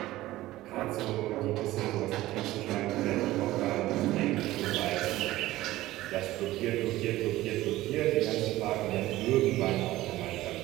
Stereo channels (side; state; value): left; quieter; 16.4 dB